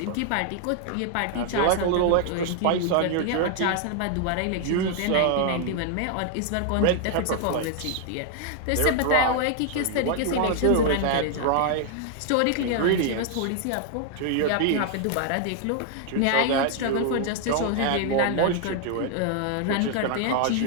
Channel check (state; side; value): different; both; correlation 0.00